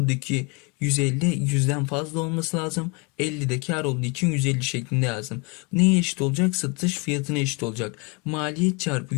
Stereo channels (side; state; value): right; quieter; 30.5 dB